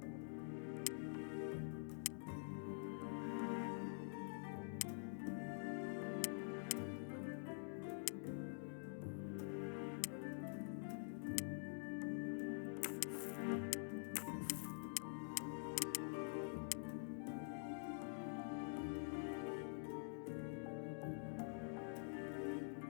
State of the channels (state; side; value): silent; right; digital silence